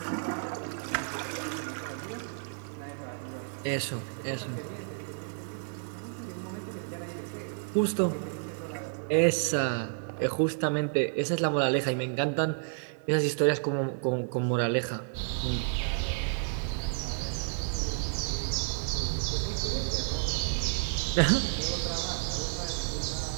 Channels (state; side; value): silent; left; 57 dB below the other